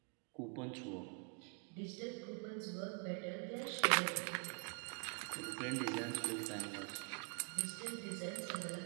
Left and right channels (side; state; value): left; quieter; 39.6 dB